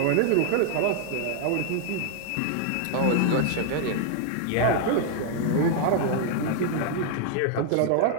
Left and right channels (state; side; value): different; both; correlation 0.00